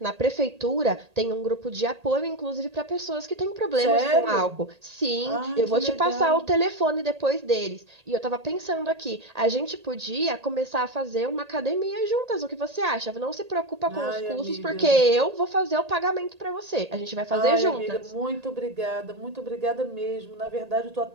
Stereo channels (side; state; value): left; late; 1.8 ms